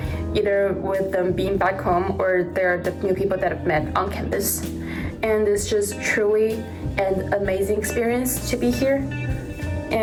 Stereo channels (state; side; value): identical; both; correlation 1.00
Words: either with them being back home or they're the new people that I've met on campus. And it's just truly an amazing experience to be here.